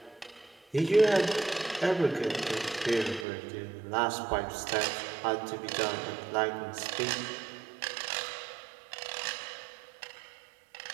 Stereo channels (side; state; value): left; drops out; at 3.2 s